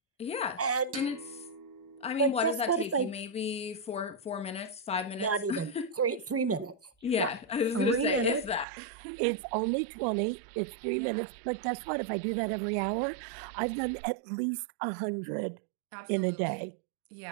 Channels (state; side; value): drops out; left; at 8.7 s